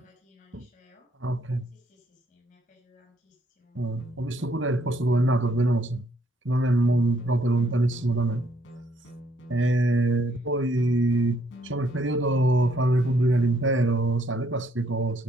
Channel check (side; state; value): both; normal; correlation 0.69